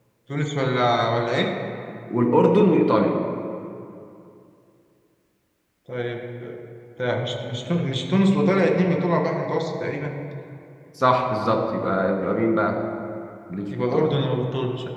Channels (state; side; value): identical; both; correlation 1.00